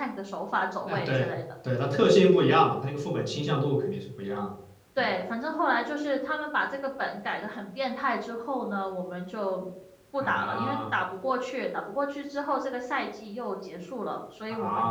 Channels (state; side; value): identical; both; correlation 1.00